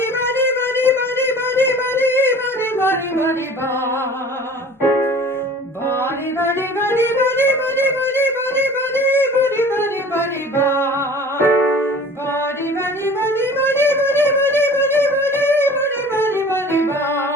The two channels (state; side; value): normal; both; correlation 0.44